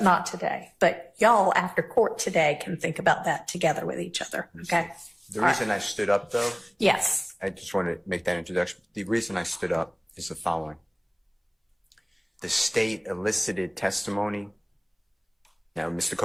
not today. But y'all after court today can think about that together with each other. Okay. The reason I stood up, though, Yes. I just want to make that introduction. The reason I stood up is the following. The state elicited testimony. Now, Mr.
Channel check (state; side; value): identical; both; correlation 1.00